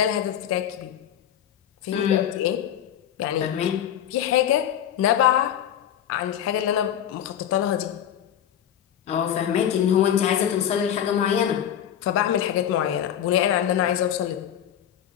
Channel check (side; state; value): right; quieter; 10.2 dB